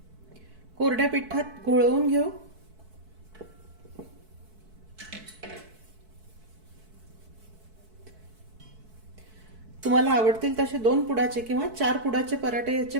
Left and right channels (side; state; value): left; late; 4.6 ms